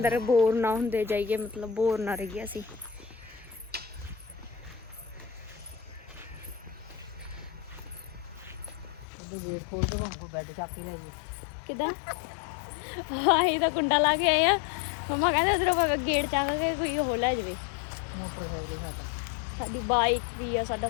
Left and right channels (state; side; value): drops out; right; at 9.1 s